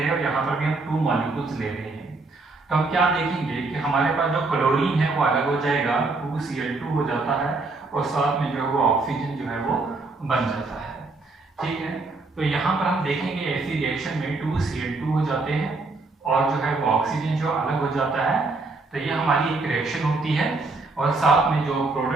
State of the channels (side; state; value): left; quieter; 3.5 dB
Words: हैं और यहाँ पर भी हम 2 मॉलिक्यूल्स ले रहे हैं। तो हम क्या देखेंगे कि हमारे पास जो क्लोरीन है वो अलग हो जाएगा, 2Cl2 हो जाता है, और साथ में जो है वो ऑक्सीजन जो है वो बन जाता है। ठीक है, तो यहाँ पर हम देखेंगे ऐसी रिएक्शन में 2Cl2 हो जाते हैं और जो है वो ऑक्सीजन जो अलग हो जाता है। तो ये हमारी एक रिएक्शन होती है, और साथ में जो